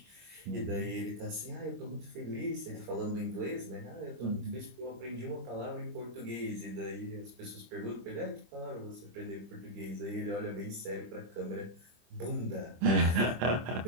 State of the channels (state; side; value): late; left; 25 ms